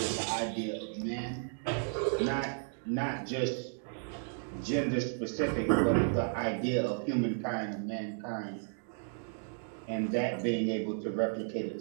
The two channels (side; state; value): left; silent; 55 dB below the other